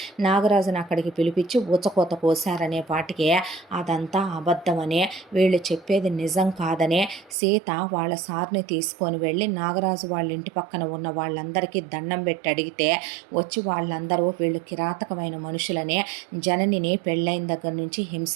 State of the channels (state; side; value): drops out; left; at 7.4 s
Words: నాగరాజుని అక్కడికి పిలిపించి ఊచకోత కోసారనే పాటికి అదంతా అబద్ధమనే, వీళ్ళు చెప్పేది నిజం కాదనే సీత వాళ్ళ సార్ని తీసుకొని వెళ్ళి నాగరాజు వాళ్ళ ఇంటి పక్కన ఉన్న వాళ్ళందరికీ దండం పెట్టి అడిగితే వచ్చి వాళ్ళందరూ వీళ్ళు కిరాతకమైన మనుషులనే, జననిని పెళ్ళైన దగ్గర నుంచి